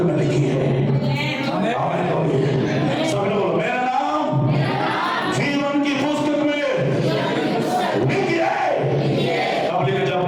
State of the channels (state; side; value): identical; both; correlation 1.00